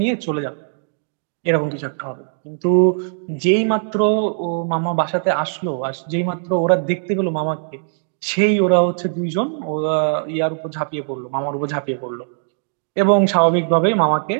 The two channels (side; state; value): left; silent; digital silence